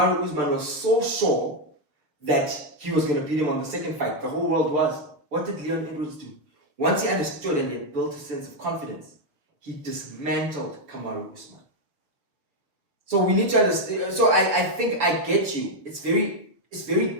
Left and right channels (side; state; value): left; late; 6.7 ms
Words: Usman was so sure that he was going to beat him on the second fight. The whole world was. What did Leon Edwards do? Once he understood and he had built a sense of confidence, he dismantled Kamaru Usman. So we need to understand. So I think I get you. It's very